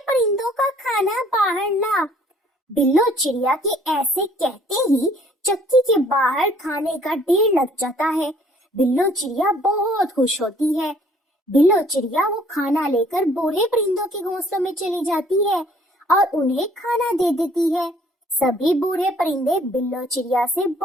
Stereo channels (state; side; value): normal; both; correlation 0.59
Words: परिंदों का खाना बाहर ला। बिल्लो चिड़िया के ऐसे कहते ही चक्की के बाहर खाने का ढेर लग जाता है। बिल्लो चिड़िया बहुत खुश होती है। बिल्लो चिड़िया वो खाना लेकर बूढ़े परिंदों के घोंसलों में चली जाती है और उन्हें खाना दे देती है। सभी बूढ़े परिंदे बिल्लो चिड़िया से